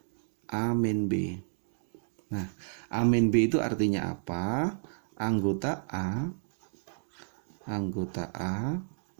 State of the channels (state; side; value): silent; left; digital silence